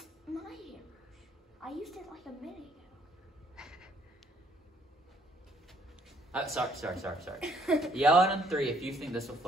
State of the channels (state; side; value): normal; both; correlation 0.65